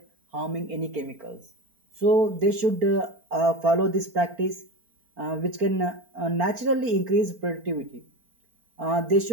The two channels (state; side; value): late; left; 4.4 ms